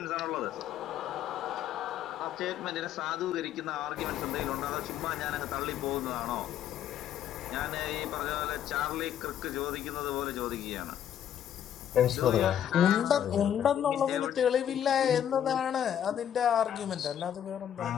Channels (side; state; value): right; quieter; 10.0 dB